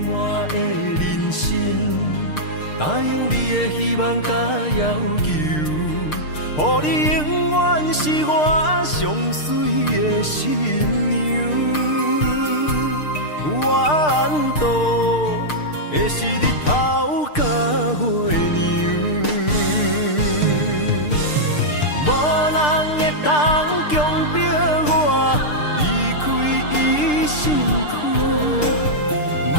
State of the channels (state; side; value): late; right; 6.6 ms